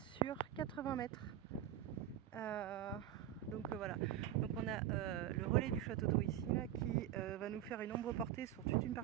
sur 80 mètres. Donc voilà, donc on a le relais du château d'eau ici là, qui va nous faire une ombre portée sur toute une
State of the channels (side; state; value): left; quieter; 11.6 dB